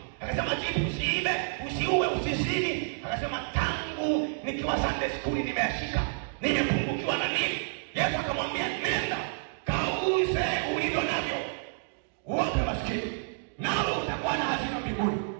Akasema, jibu, usiibe, usiue, usizini. Akasema, tangu nikiwa Sunday school nimeashika. Nimepungukiwa na nini? Yesu akamwambia, nenda kauze ulivyo navyo, uwape maskini, nawe utakuwa na hazina mbinguni,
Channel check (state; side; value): silent; left; digital silence